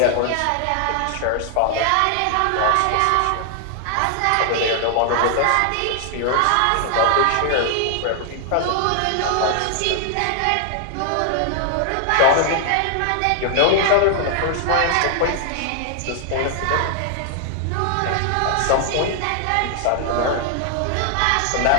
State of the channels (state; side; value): different; both; correlation 0.00